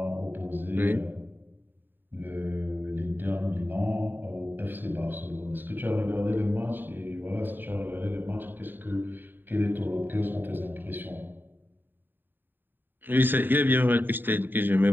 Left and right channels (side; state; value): left; late; 0.093 ms